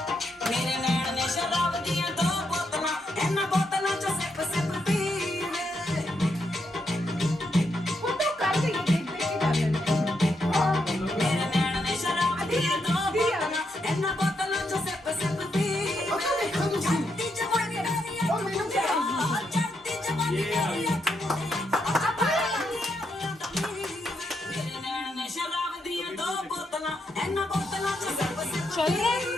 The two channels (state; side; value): normal; both; correlation 0.80